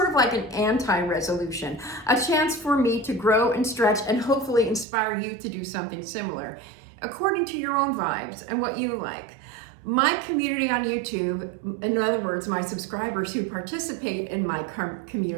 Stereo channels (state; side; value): drops out; left; at 4.9 s